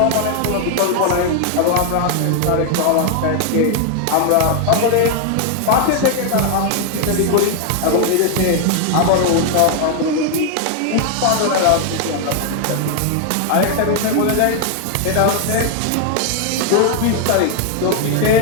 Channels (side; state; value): both; different; correlation 0.01